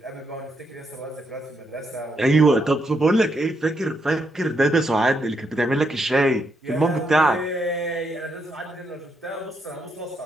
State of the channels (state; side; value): normal; both; correlation 0.78